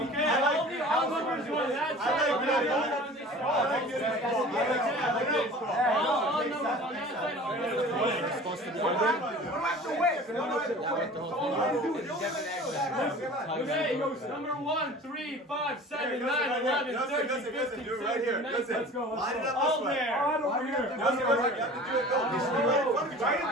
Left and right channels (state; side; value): normal; both; correlation 0.42